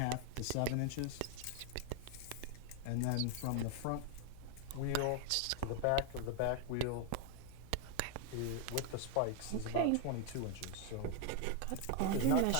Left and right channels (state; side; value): different; both; correlation 0.00